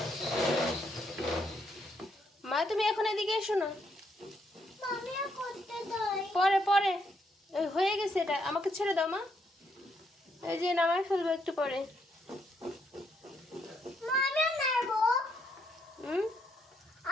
মা তুমি এখন এদিকে এসো না। পরে পরে হয়ে গেছে, এটা আমাকে ছেড়ে দাও মা। এই যে নামাই ফেলবো একটু পরে।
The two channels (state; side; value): normal; both; correlation 0.75